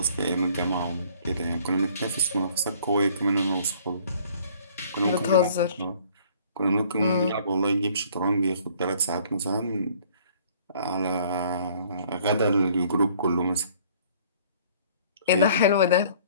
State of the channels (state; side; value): inverted; both; correlation -0.56